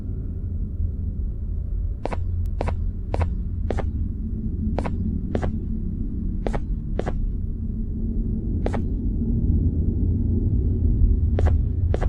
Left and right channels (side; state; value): both; identical; correlation 1.00